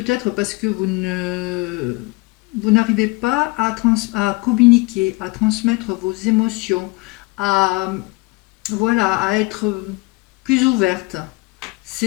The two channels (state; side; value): quieter; right; 25.0 dB